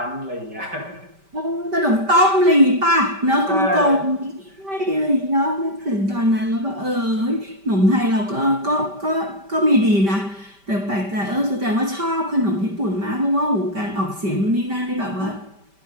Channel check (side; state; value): left; late; 5.1 ms